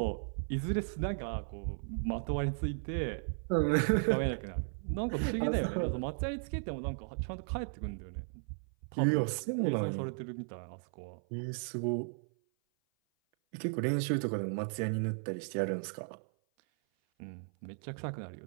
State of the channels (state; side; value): silent; left; 54 dB below the other